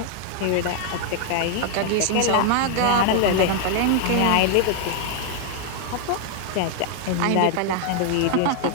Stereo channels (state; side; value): different; both; correlation 0.00